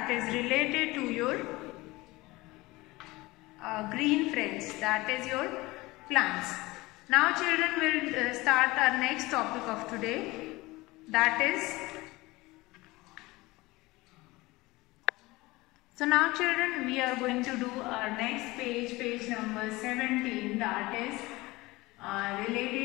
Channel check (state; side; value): quieter; right; 21.0 dB